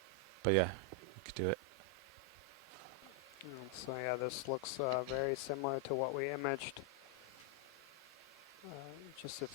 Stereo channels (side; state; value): both; normal; correlation 0.00